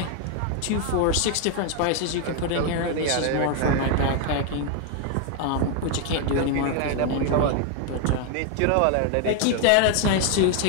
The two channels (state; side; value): different; both; correlation 0.00